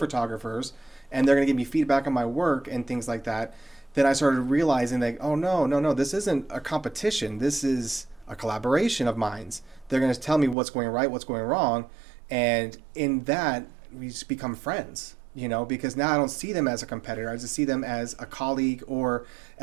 and they're going to give me feedback on my work and things like that. Then I started realizing that, oh, no, this isn't a competition. This is a collaboration of minds. They're going to tell me what's going right, what's going wrong. And in that, we just become friends, because now I don't see them as a competitor. I just see them as a colleague or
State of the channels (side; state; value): left; drops out; at 10.6 s